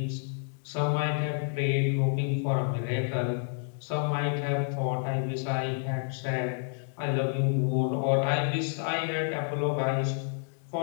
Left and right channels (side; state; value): right; silent; 58 dB below the other